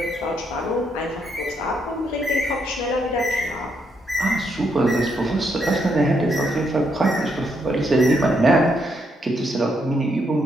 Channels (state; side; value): normal; both; correlation 0.77